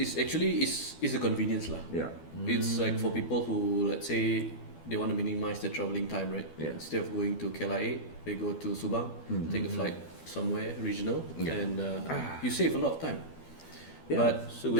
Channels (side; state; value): right; late; 12 ms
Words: actually is a convenience lah. Yeah. It's like for people who, let's say, they want to minimize their traveling time, right? Yeah. Instead of going to KLIA, they go to Subang, take a flight somewhere regional, Yeah. and you save a lot of time. Yeah. But So will